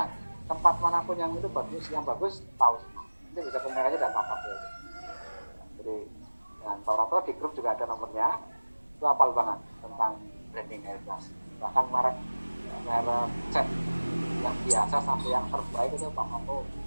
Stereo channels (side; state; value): both; inverted; correlation -1.00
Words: Tempat manapun yang itu bagus, yang bagus tahu semua. Nanti bisa komunikasi dengan Pak Prapto. Jadi dengan Pak Prapto di grup juga ada nomornya. Itu hafal banget tentang branding Airbus. Bahkan merek cat yang biasa sampai yang terbaik itu Pak Prapto